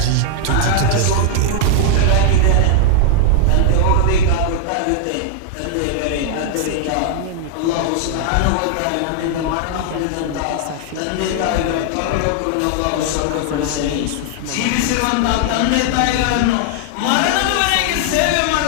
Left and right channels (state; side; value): different; both; correlation -0.01